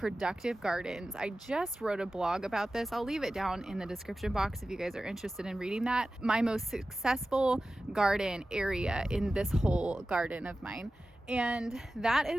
gardens, I just wrote a blog about this. I'll leave it down in the description box if you guys are interested in reading that. My most successful garden area in this whole garden of mine. And that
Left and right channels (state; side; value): normal; both; correlation 0.95